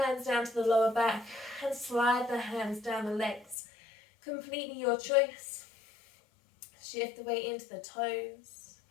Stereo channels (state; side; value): drops out; right; at 3.6 s